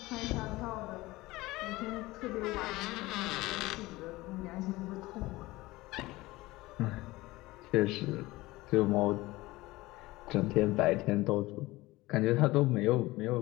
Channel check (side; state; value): right; quieter; 19.7 dB